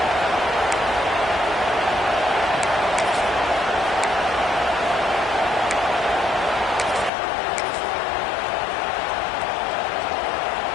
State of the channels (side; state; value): right; drops out; at 7.1 s